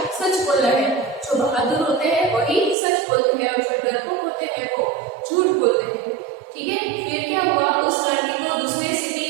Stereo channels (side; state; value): left; drops out; at 2.8 s